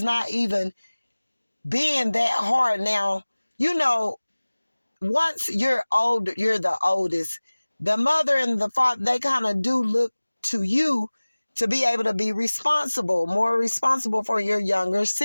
not even being that hard. Now, once you're old, you're the oldest. The mother and the father, they kind of do look to you to be able to be responsible, more responsible for your younger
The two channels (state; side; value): inverted; both; correlation -1.00